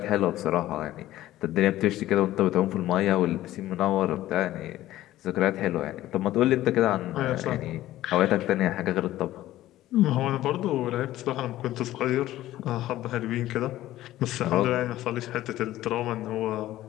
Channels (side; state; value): right; quieter; 14.8 dB